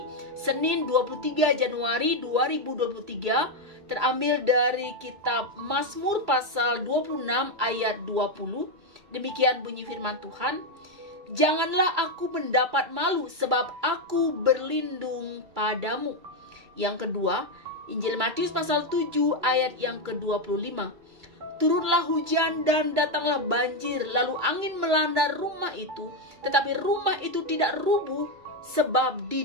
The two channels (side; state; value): left; late; 2.3 ms